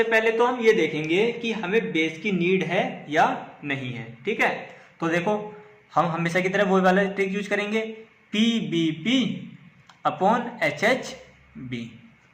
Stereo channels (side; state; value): both; identical; correlation 1.00